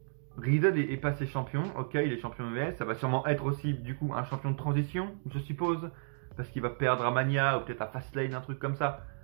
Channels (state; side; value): silent; left; digital silence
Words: Riddle est passé champion. Ok, il est champion US. Ça va sûrement être aussi, du coup, un champion de transition, je suppose. Parce qu'il va perdre à Mania ou peut-être à Fastlane, un truc comme ça.